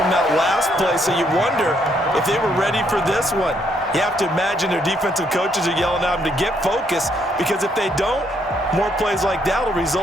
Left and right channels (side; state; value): both; normal; correlation 0.72